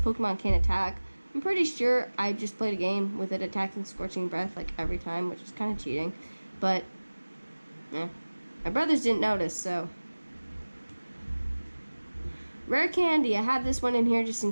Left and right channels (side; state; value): both; inverted; correlation -1.00